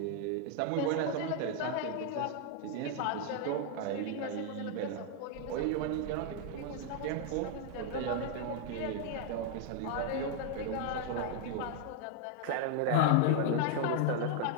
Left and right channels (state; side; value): different; both; correlation 0.00